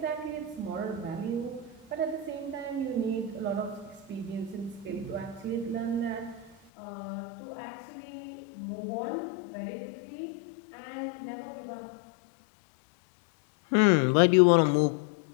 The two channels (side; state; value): right; drops out; at 6.6 s